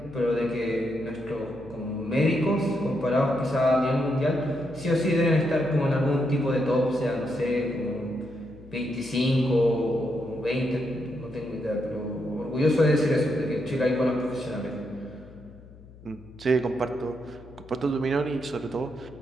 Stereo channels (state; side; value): noise; left; hum, 20 dB below the sound